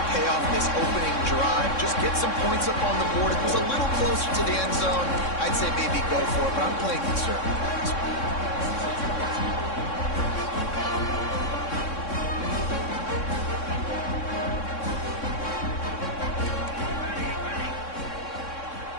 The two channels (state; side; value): late; right; 3.6 ms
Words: pay off this opening drive. Just get some points up on the board. If it was a little closer to the end zone, I'd say maybe go for it, but I'm playing conservative.